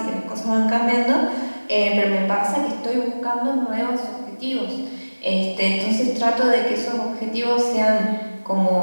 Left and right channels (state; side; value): inverted; both; correlation -1.00